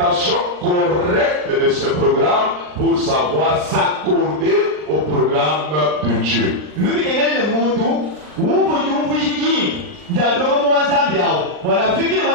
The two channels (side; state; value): left; late; 39 ms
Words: correcte de ce programme pour savoir s'accorder au programme de Dieu.